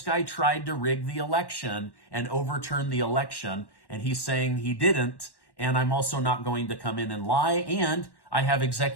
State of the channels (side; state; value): right; late; 1.1 ms